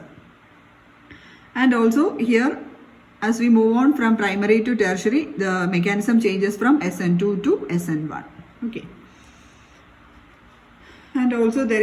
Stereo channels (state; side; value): identical; both; correlation 1.00